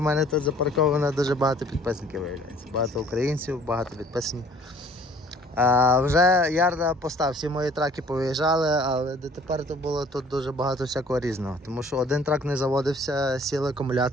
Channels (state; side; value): normal; both; correlation 0.55